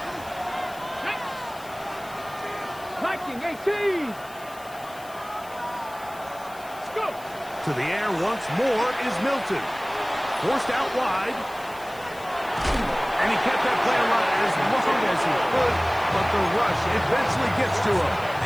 Viking 18. Let's go. To the air once more is Milton. Forced out wide. And he kept that play alive as long as he could, but the rush eventually gets to him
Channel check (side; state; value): left; noise; hiss, 21 dB below the sound